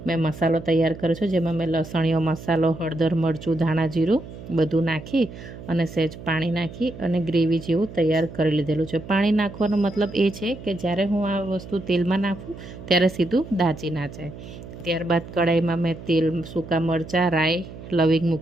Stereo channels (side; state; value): right; noise; hum, 14 dB below the sound